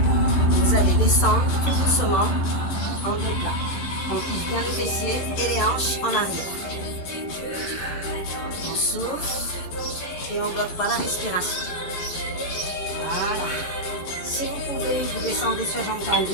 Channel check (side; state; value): right; late; 11 ms